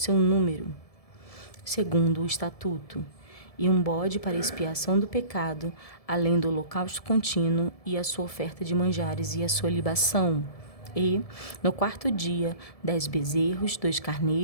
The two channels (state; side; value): late; right; 1.7 ms